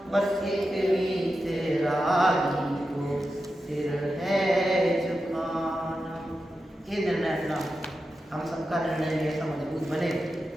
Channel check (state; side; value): normal; both; correlation 0.90